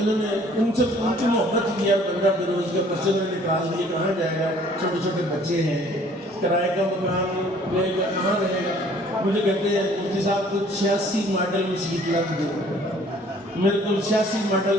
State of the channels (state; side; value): normal; both; correlation 0.56